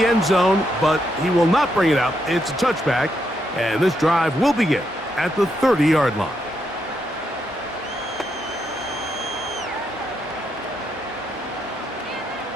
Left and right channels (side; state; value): both; normal; correlation 0.79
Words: end zone, but he will not bring it out. It's a touchback, and this drive will begin at the 30-yard line.